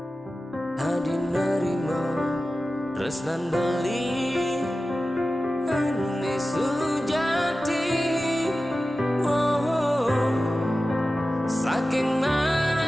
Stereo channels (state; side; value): normal; both; correlation 0.95